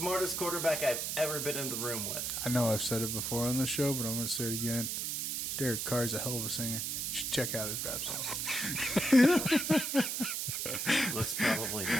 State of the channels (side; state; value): right; noise; hiss, 1 dB below the sound